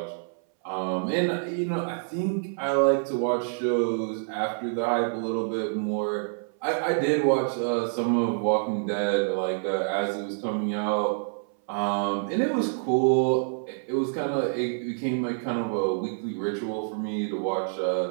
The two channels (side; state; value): left; silent; 60 dB below the other